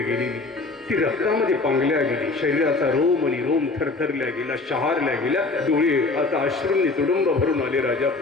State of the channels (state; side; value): quieter; right; 3.6 dB